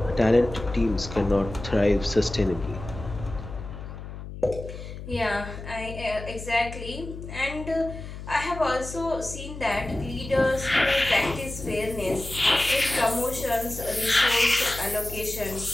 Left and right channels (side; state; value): left; noise; hum, 11 dB below the sound